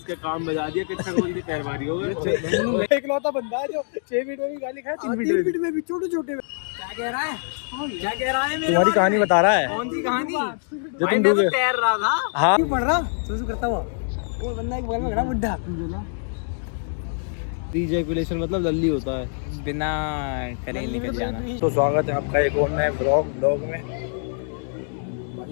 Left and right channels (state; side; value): silent; right; digital silence